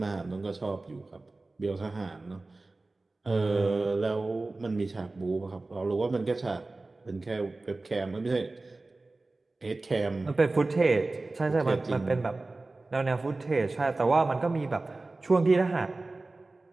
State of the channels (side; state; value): left; quieter; 3.2 dB